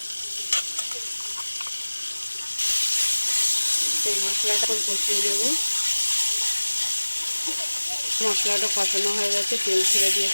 সেই মশলাটা কষিয়ে নেব। মশলাটা কষানো হয়ে গেছে, তেল ছেড়ে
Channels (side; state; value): both; inverted; correlation -1.00